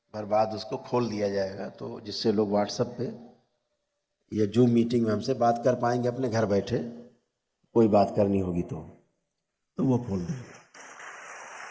भर बाद उसको खोल दिया जाएगा, तो जिससे लोग व्हाट्सएप पे या जूम मीटिंग में हमसे बात कर पाएंगे अपने घर बैठे, कोई बात करनी होगी तो वो खोल देंगे।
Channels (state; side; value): identical; both; correlation 1.00